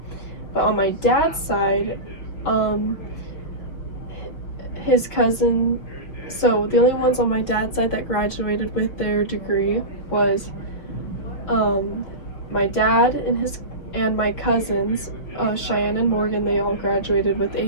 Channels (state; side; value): late; right; 5.8 ms